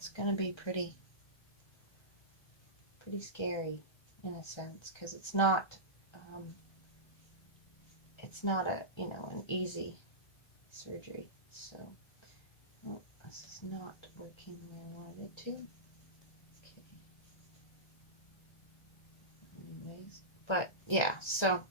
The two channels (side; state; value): right; late; 1.3 ms